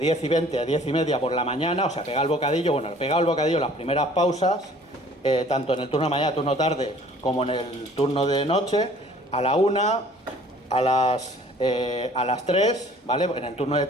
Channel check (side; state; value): both; normal; correlation 0.53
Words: 10 y 20 a 10 y media por la mañana, o sea, pegado el bocadillo. Bueno, pegado el bocadillo, las primeras pausas, tanto en el turno de mañana, turno tarde, como en el turno de noche, a la 1, a las 3, ¿vale? En el turno de